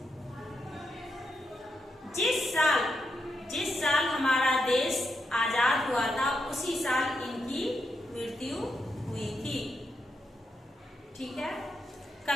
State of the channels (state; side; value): normal; both; correlation 0.83